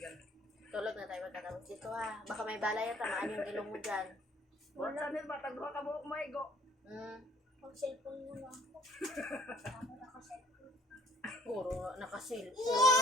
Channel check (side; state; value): both; normal; correlation 0.58